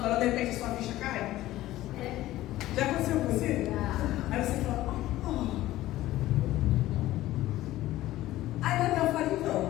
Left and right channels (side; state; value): right; quieter; 15.6 dB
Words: de repente a sua ficha cai? Já aconteceu com você? Aí você fala, Aí Natal fala,